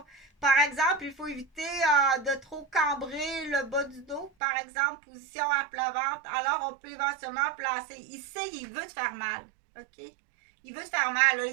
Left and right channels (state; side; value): drops out; left; at 4.3 s